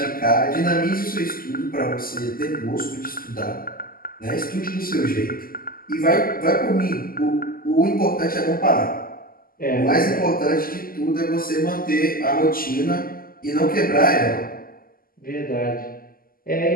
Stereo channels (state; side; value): late; right; 0.42 ms